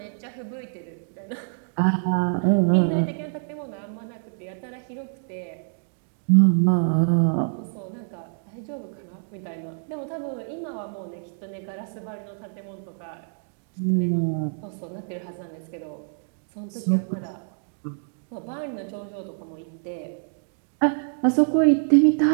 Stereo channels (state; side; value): silent; left; digital silence